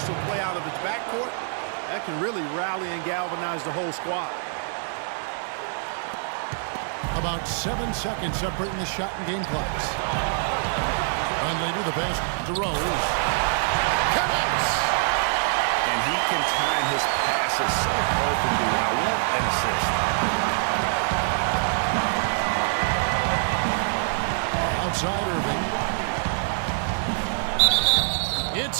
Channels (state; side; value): silent; left; 60 dB below the other